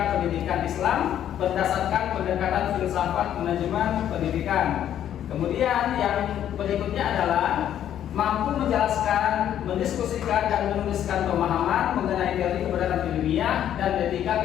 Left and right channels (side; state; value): right; quieter; 10.6 dB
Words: pendidikan Islam berdasarkan pendekatan filsafat manajemen pendidikan. Kemudian yang berikutnya adalah mampu menjelaskan, mendiskusikan dan menuliskan pemahaman mengenai teori kebenaran ilmiah dan